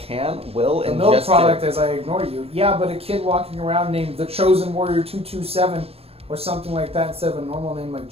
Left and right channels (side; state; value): left; late; 0.29 ms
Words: will, The and milk just product did. as I ignore you. Yeah, but a kid walking around named the Chosen Warrior 227 or something like that instead of a normal name like